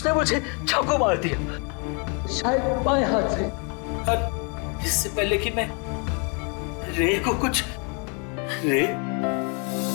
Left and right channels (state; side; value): quieter; right; 35.5 dB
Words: मुझे चाकू मार दिया, शायद बाएं हाथ से। और इससे पहले कि मैं रे को कुछ रे